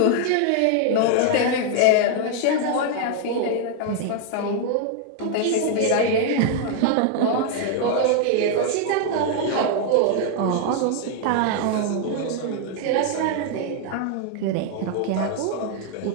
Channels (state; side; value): different; both; correlation 0.00